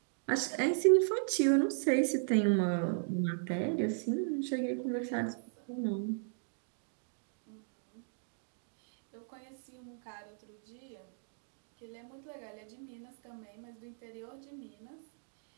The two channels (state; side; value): silent; left; digital silence